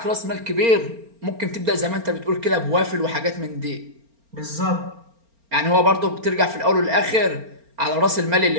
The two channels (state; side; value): late; left; 4.4 ms